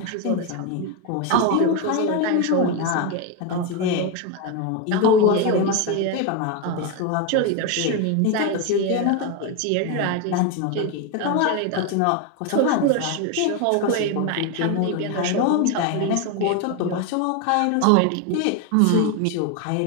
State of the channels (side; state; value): both; different; correlation 0.02